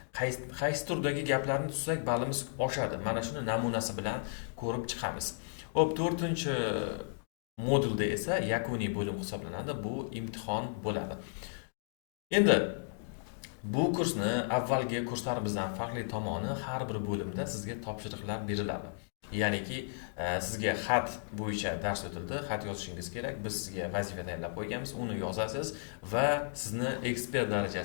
qaysi turdagi gaplarni tuzsak ballimiz oshadi. Mana shuni namunasi bilan ko'rib chiqamiz. Xo'p, 4-chi modulda esa yakuniy bo'lim hisoblanadi. Bu imtihon bo'ladi. Endi bu kursni avvalgi kurslarimizdan farqli tomoni, har bir bo'limda sizga topshiriqlar beriladi. Ya'niki sizga xat bo'yicha dars o'tildi, xat yozishingiz kerak. Biz sizga vazifa tayyorlab qo'yganmiz, uni yozasiz va sizni ekspert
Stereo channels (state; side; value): silent; right; digital silence